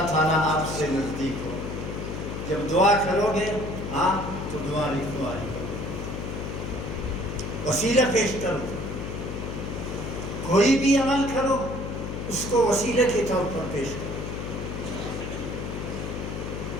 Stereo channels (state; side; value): noise; left; hum, 5 dB below the sound